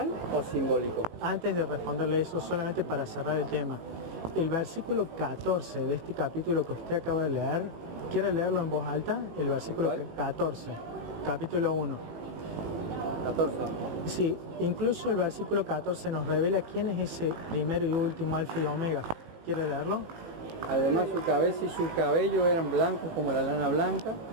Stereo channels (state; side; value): late; left; 18 ms